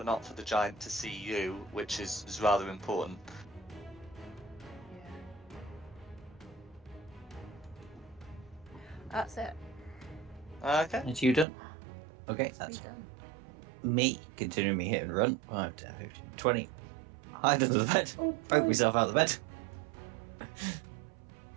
not for the giant to see you, which is rather important. Yeah. That's it. Okay. It's you done. Okay, It's that's done. me continuing me hit and run. 5, 10, 15, 20. Hide under the bed. Oh, Poke myself out of the bed.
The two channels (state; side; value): drops out; left; at 11.5 s